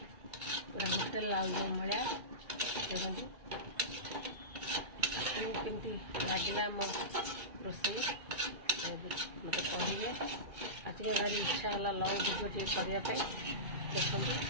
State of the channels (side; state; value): left; late; 2.2 ms